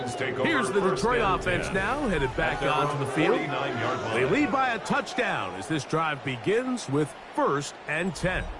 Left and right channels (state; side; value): identical; both; correlation 1.00